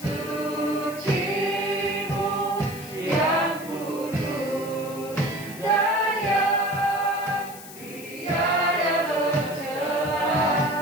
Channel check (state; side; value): noise; left; hiss, 15 dB below the sound